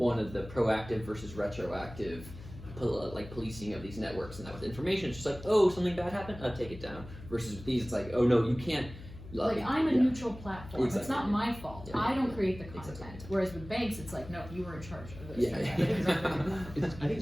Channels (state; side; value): noise; left; hum, 15 dB below the sound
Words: of the proactive versus retroactive, policing of these networks, and that with information, it's just like, oh, something bad happened, take it down. Versus with these, it's like, oh no, you can't. I'm a neutral platform. Exactly. It's not my fault. Yeah. I don't create the content. Exactly. Whereas with banks, it's like, no, you were in charge of this. Yeah. I think